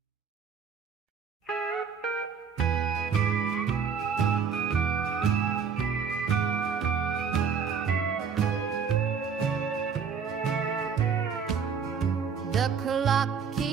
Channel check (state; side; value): quieter; left; 6.4 dB